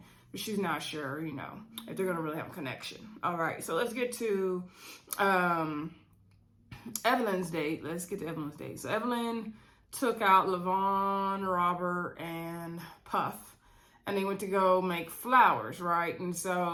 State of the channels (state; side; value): identical; both; correlation 1.00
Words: but she's not sure, if they're going to really have a connection. All right, so let's get to Evelyn's date. Let's get to Evelyn's date. So Evelyn took out Levon, Robert, and Puff, and they went to go make flowers, right? And